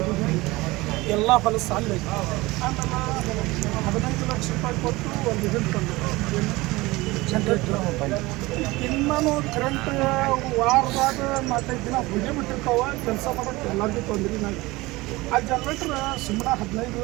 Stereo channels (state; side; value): quieter; left; 21.1 dB